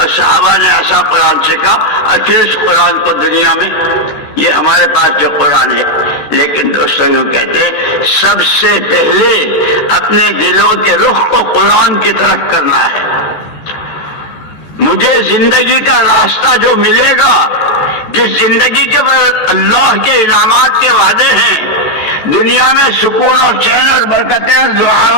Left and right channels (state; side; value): late; right; 14 ms